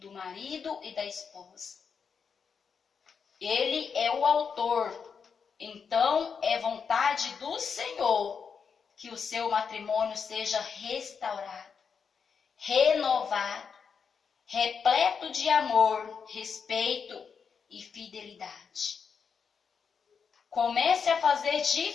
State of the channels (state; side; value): quieter; right; 6.2 dB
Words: marido e da esposa. Ele é o autor. Então, é vontade do Senhor que o seu matrimônio seja restaurado, renovado, repleto de amor, respeito e fidelidade. Comece a fazer